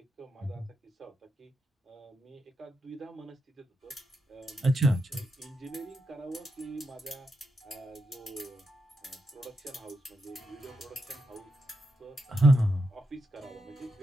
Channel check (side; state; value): both; normal; correlation 0.84